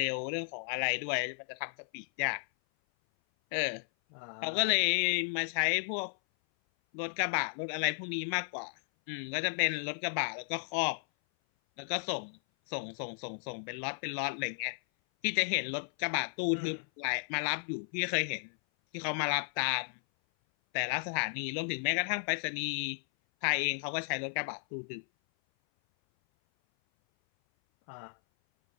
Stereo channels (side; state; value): right; silent; 55 dB below the other